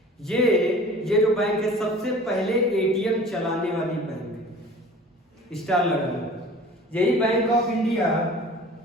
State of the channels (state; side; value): normal; both; correlation 0.44